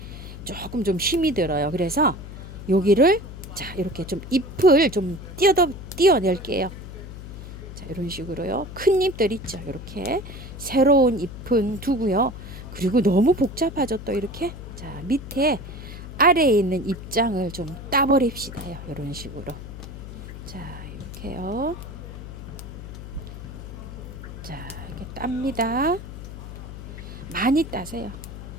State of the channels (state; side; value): noise; left; hum, 11 dB below the sound